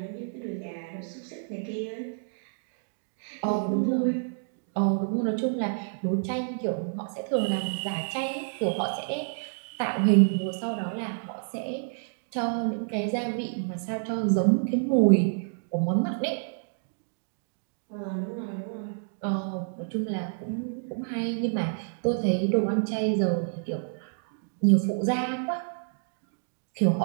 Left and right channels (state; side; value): silent; left; digital silence